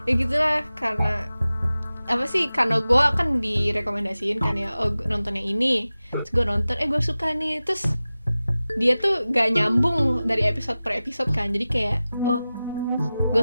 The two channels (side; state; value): both; inverted; correlation -0.96